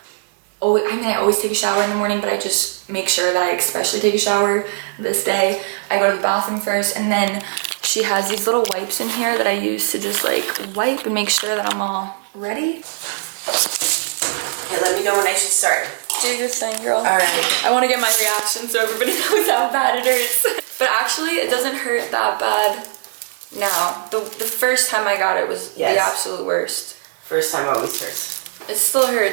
always take a shower in the morning, but I just make sure that I especially take a shower this day. I go to the bathroom first, and then she has these little wipes in here that I use to just like wipe and make sure that I'm all ready. Okay, let me know when I should start. Do your thing, girl. All right. I want to get my reaction so everybody knows how bad it hurts. But actually, it doesn't hurt that bad now. The first time I got it was the absolute worst. First time always hurts. It still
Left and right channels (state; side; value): silent; left; 58 dB below the other